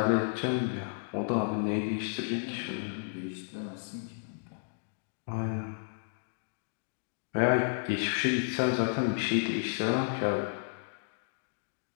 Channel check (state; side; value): silent; right; digital silence